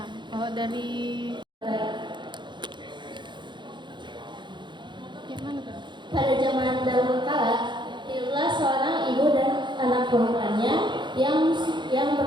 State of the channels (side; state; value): left; late; 0.23 ms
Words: kalau dari gimana tuh? Pada zaman dahulu kala, hiduplah seorang ibu dan anak perempuannya yang